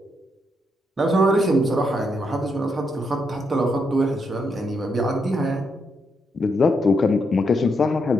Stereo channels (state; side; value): normal; both; correlation 0.79